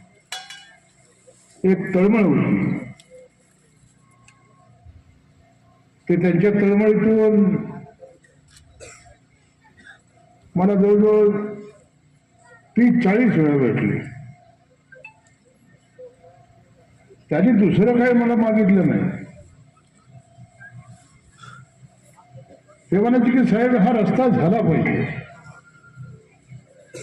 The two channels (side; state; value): both; identical; correlation 1.00